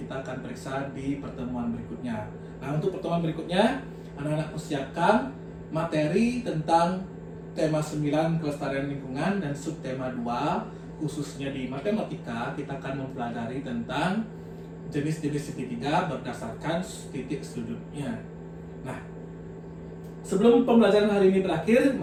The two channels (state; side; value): identical; both; correlation 1.00